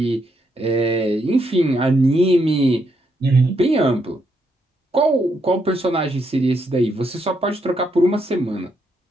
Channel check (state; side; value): normal; both; correlation 0.77